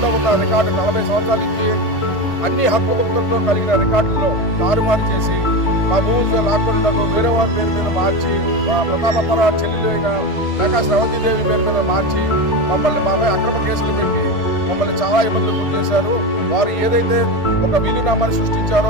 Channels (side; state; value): right; late; 1.8 ms